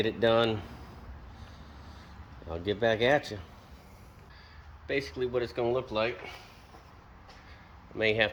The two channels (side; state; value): both; identical; correlation 1.00